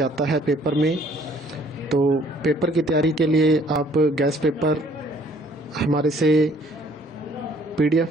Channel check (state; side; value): normal; both; correlation 0.59